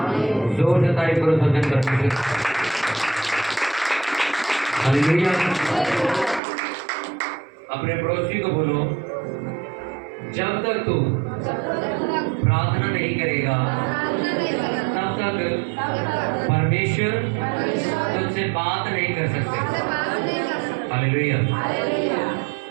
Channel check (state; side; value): drops out; left; at 6.4 s